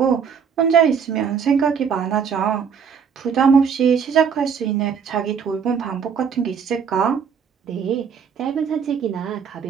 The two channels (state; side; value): quieter; left; 6.8 dB